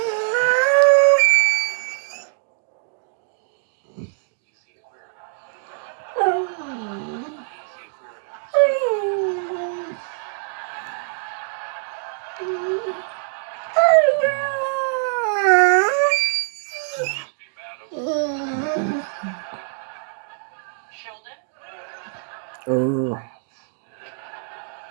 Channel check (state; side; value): silent; left; digital silence